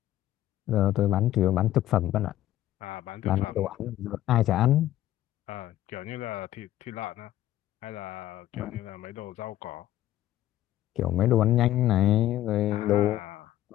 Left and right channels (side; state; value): right; quieter; 13.7 dB